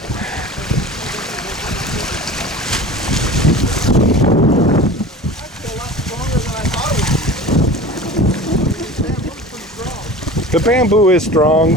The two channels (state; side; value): normal; both; correlation 0.37